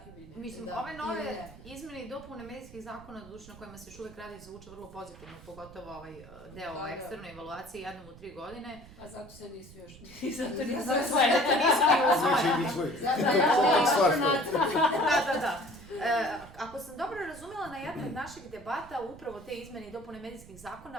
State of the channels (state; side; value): noise; right; rumble, 19 dB below the sound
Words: Mislim, ove nove izmene i dopune medijskih zakona, na kojima se još uvek radi, zvuče vrlo pozitivno, pogotovo ovaj deo o eksternoj evaluaciji jednom u 3 godine. A zato se nisu još... Zato nisu usvojene. Da. Ako sam dobro razumela, na jednoj od naših debata upravo te izmene i dopune medijskih